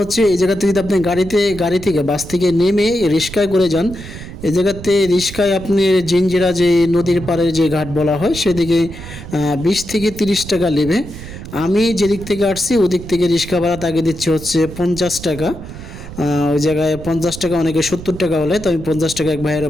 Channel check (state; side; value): noise; right; rumble, 12 dB below the sound